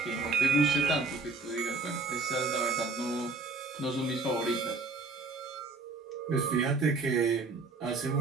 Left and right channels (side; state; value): left; quieter; 3.7 dB